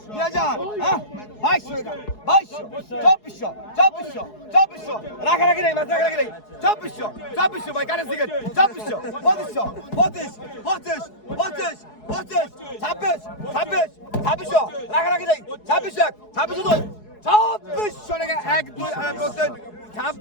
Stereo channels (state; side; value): late; right; 4.7 ms